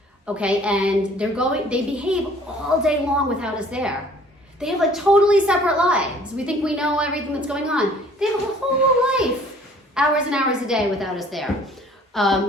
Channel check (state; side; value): normal; both; correlation 0.54